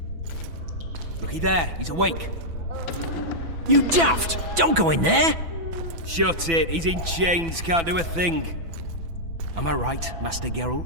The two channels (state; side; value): late; left; 6.0 ms